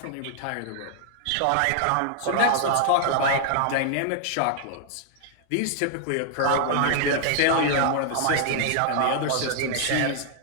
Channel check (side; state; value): both; different; correlation 0.00